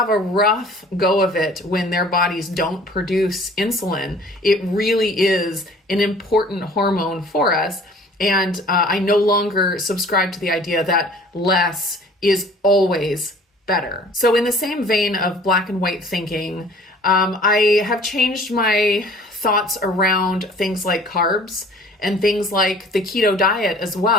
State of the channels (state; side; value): normal; both; correlation 0.50